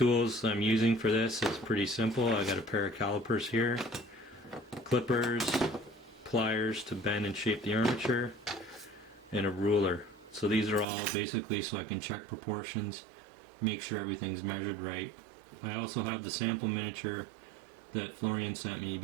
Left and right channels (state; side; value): drops out; left; at 10.9 s